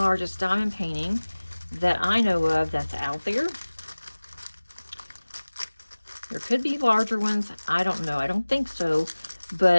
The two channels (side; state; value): both; inverted; correlation -1.00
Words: diamond painting that I know of that's out there. There could be larger ones. I don't know. I don't think so.